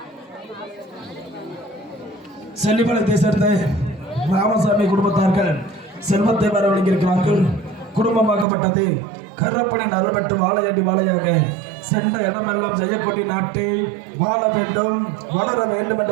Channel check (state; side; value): drops out; left; at 8.5 s